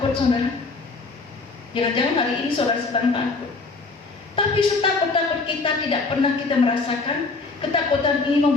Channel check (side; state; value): right; quieter; 3.9 dB